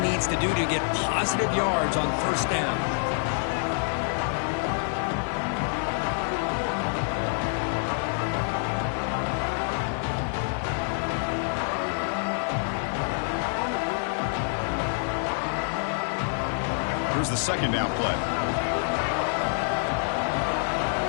to do to get positive yards on first down. Here's the second down play.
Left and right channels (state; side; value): silent; right; 60 dB below the other